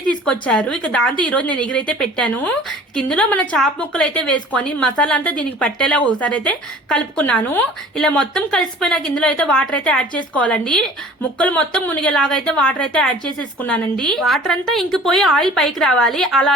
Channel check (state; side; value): normal; both; correlation 0.46